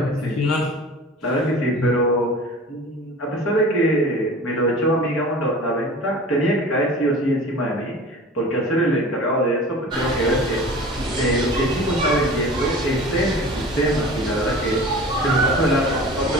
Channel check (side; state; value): both; normal; correlation 0.39